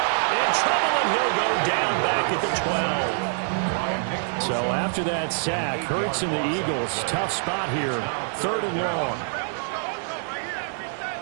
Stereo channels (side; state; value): left; silent; 62 dB below the other